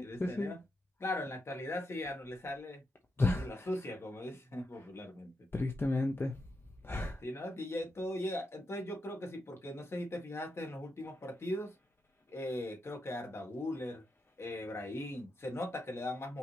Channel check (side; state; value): both; normal; correlation 0.85